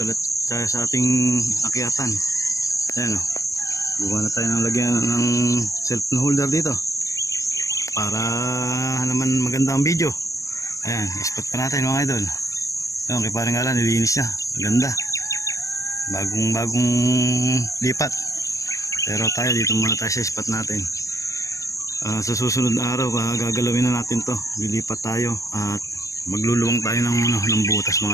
ulit tayo sa ating akyatan. Ayan o. Buka na tayo ng lagyan ng cellphone holder dito. Para naman maganda ang video. Ayan, spot pa natin mga idol. Ayan, kay parang Alan, nilinis niya. Maganda. Bagong lipat. Pero tayo dito muna tayo sa spot natin. Sa susunod na araw, gagalawin na natin to. Lilipat tayo at magluluwang tayo ng butas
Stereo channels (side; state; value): right; late; 0.15 ms